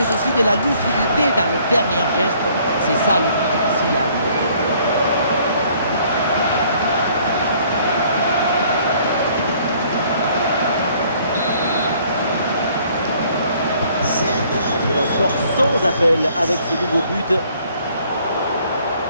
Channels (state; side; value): inverted; both; correlation -0.60